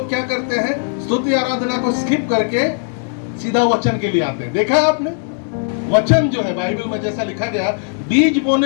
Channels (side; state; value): right; silent; 67 dB below the other